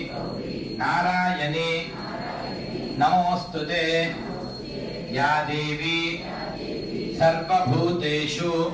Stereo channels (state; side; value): identical; both; correlation 1.00